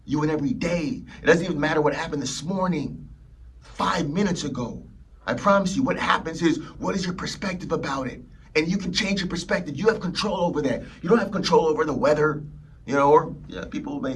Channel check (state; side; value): identical; both; correlation 1.00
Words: You win every day. It doesn't even matter what happened this morning, 5 minutes ago. I promise you, what happens is, what is your perspective about it? And you can change your perspective. You have control over that. You don't have control over the weather, people may